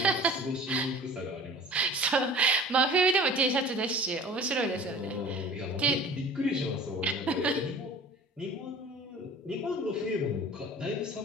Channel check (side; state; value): both; normal; correlation 0.43